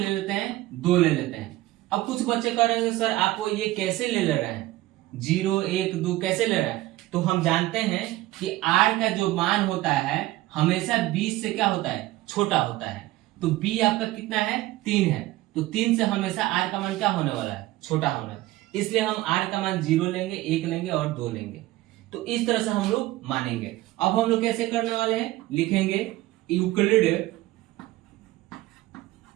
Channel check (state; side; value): quieter; left; 17.3 dB